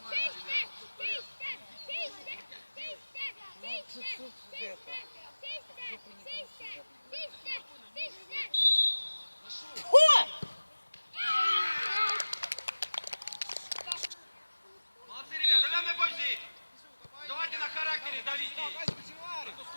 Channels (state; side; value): inverted; both; correlation -1.00